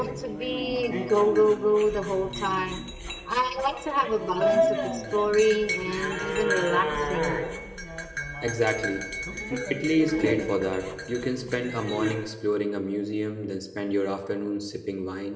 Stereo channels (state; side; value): identical; both; correlation 1.00